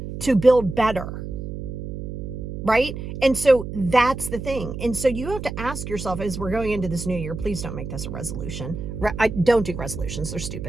to build better. Right? And so that's the thing. And so you have to ask yourself, as we're going into this new year, please don't make this a resolution. I don't do resolutions. They're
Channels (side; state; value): right; noise; hum, 7 dB below the sound